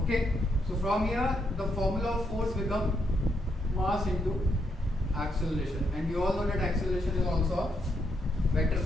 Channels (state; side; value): normal; both; correlation 0.77